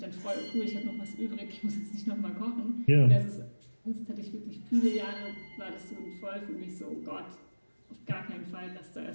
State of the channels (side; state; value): both; inverted; correlation -1.00